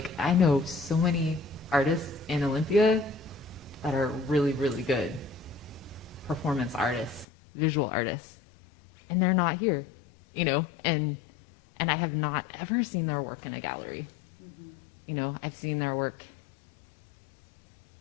I know so many artists in Olympia that are really, really good performance artists, visual artists, and they're not here, and I have not ever seen their work in a gallery. I've seen their work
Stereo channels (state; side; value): drops out; right; at 7.2 s